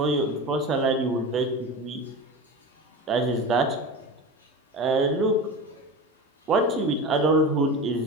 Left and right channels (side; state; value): both; normal; correlation 0.28